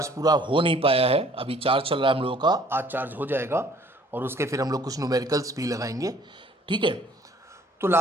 पूरा हो नहीं पाया है। अभी चार्ज चल रहा है हम लोगों का, आज चार्ज हो जाएगा और उसके फिर हम लोग कुछ न्यूमेरिकल्स भी लगाएंगे। ठीक है, तो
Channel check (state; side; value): normal; both; correlation 0.57